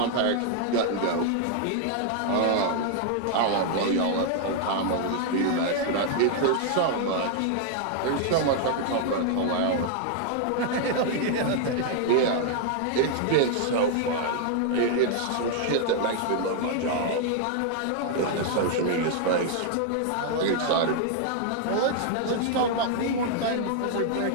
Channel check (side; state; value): both; different; correlation 0.00